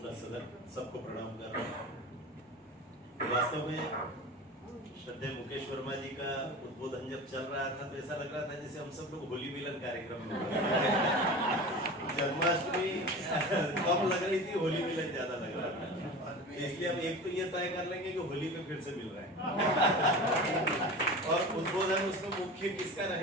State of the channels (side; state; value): both; normal; correlation 0.33